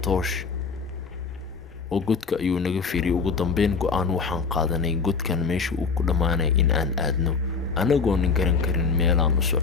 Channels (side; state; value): right; quieter; 5.1 dB